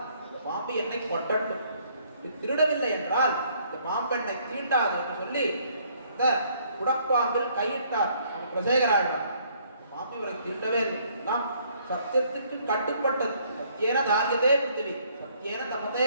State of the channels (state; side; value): inverted; both; correlation -0.64